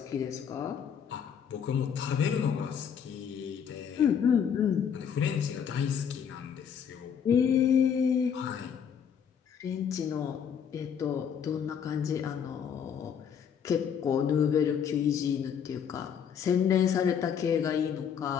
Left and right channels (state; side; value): quieter; right; 7.8 dB